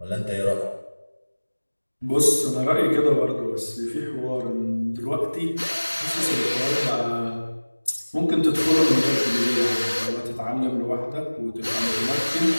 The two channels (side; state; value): both; inverted; correlation -1.00